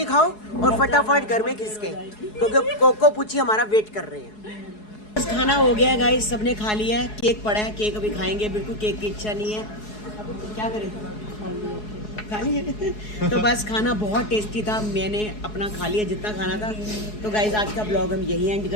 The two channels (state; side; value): late; right; 4.7 ms